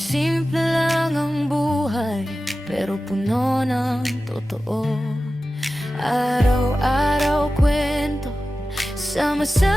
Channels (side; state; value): both; normal; correlation 0.94